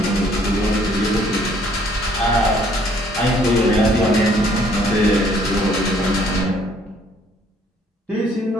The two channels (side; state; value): both; normal; correlation 0.62